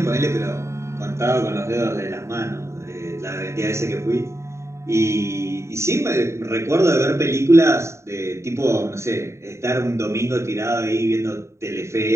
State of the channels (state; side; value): late; left; 0.14 ms